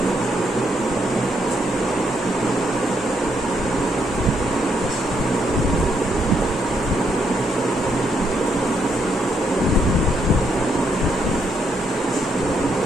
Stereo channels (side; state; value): both; normal; correlation 0.75